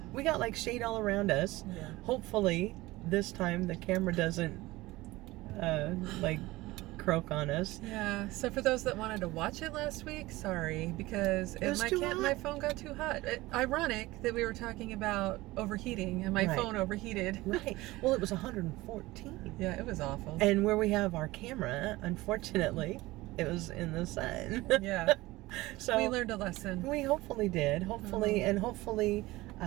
We got like shade all around us. Yeah. Hopefully this time the camera doesn't like croak on us. Yeah, so for those that wanted to watch it last week, sorry, because my phone got too hot. Ironic that we were talking about overheating and my phone overheated. Right. Well, it was 114. Yeah, it was awful. And where we have our camera, unfortunately, it was in the sun. Yeah. So we learned a lesson. We hopefully did. Hopefully, and hopefully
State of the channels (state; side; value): quieter; left; 19.4 dB